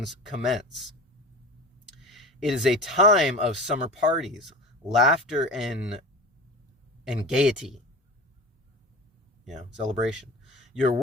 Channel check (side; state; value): both; normal; correlation 0.34